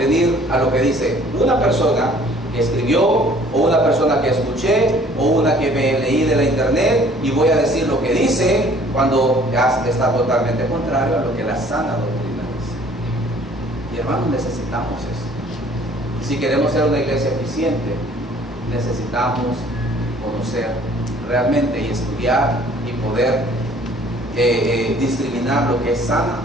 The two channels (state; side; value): normal; both; correlation 0.55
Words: a lo que dice una persona que escribió, o una persona que escuché, o una que me leí de la internet, y voy a decir lo que dice cuando ya está totalmente contrario a lo que la sana doctrina dice. Y hermanos, necesitamos eso. Si queremos ser una iglesia eficiente, necesitamos conocer realmente y estudiar y poder discriminar lo que es sana